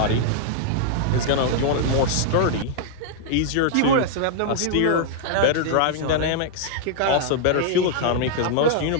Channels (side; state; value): both; different; correlation -0.01